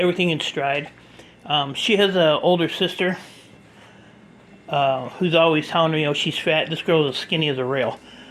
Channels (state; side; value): identical; both; correlation 1.00